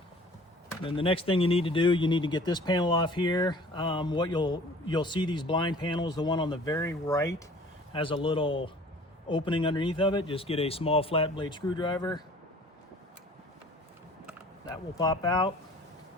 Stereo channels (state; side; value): normal; both; correlation 0.49